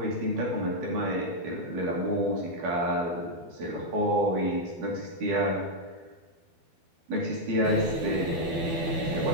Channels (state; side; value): late; left; 12 ms